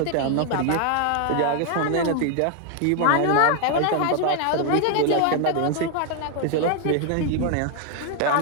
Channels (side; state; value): both; different; correlation 0.00